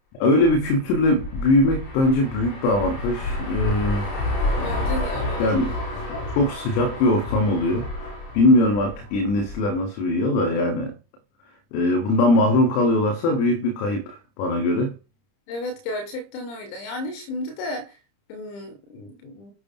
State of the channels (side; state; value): right; late; 30 ms